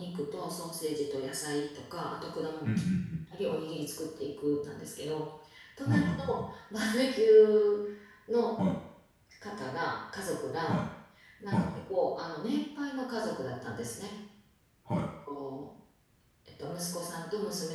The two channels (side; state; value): both; identical; correlation 1.00